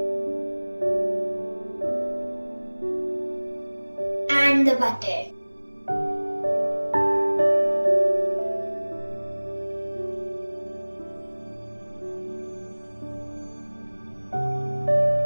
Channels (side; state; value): both; inverted; correlation -1.00